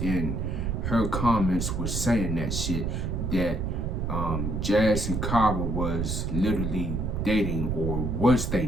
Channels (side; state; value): right; noise; rumble, 1 dB below the sound